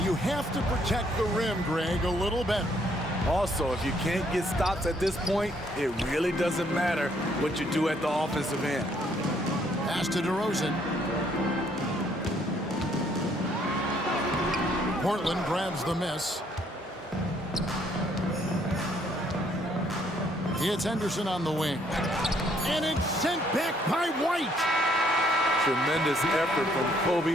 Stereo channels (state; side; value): normal; both; correlation 0.67